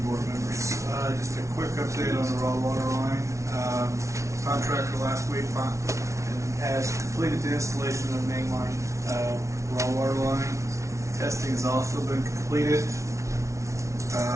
board members. Just a quick update on the raw water line. Contractor last week has completed the installation of main line raw water line. Testing has also been completed,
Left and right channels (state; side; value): late; left; 0.14 ms